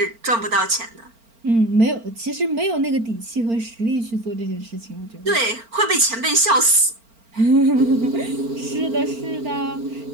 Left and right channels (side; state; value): left; late; 4.4 ms